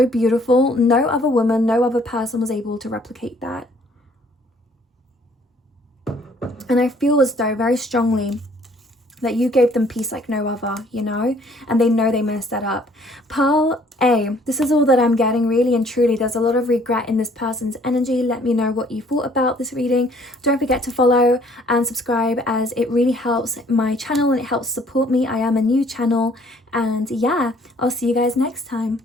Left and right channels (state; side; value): normal; both; correlation 0.60